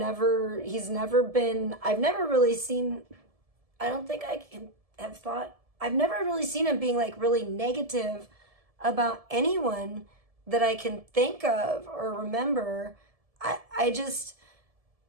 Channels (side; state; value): left; late; 1.7 ms